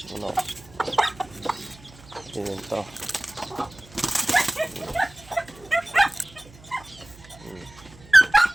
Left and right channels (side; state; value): right; noise; hum, 23 dB below the sound